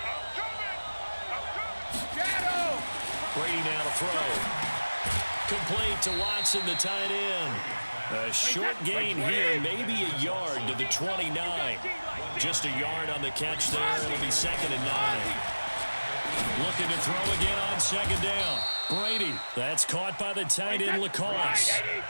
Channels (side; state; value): both; inverted; correlation -1.00